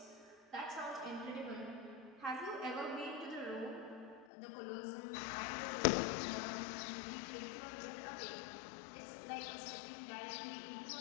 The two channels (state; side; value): drops out; right; at 4.2 s